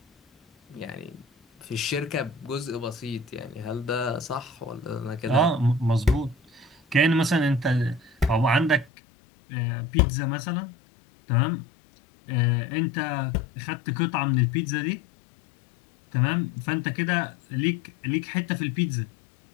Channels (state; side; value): drops out; right; at 8.9 s